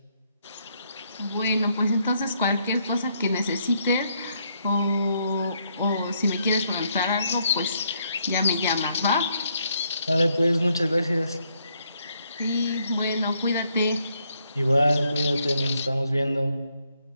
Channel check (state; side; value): inverted; both; correlation -0.73